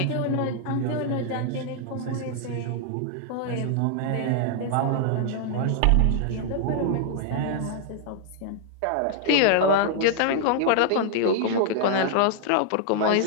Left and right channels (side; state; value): both; different; correlation 0.00